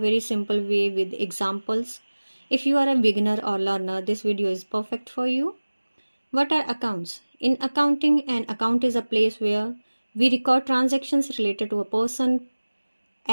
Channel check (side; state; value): both; inverted; correlation -1.00